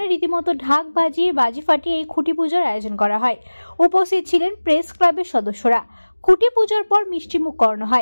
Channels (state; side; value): inverted; both; correlation -1.00